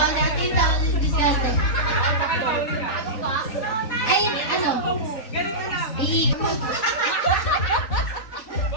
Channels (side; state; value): right; late; 3.9 ms